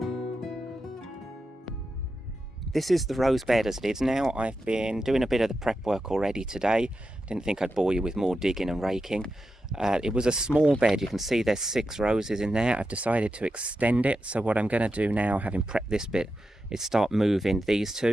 This is the rose bed as it is now. I've been doing a bit of the prep work already today. Didn't think I'd bore you with more digging and raking. It was a small bed. You can see there's 6 roses in there. I've decided to extend it. So what I'm going to do now, having prepped this bit, is start moving these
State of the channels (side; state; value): both; normal; correlation 0.89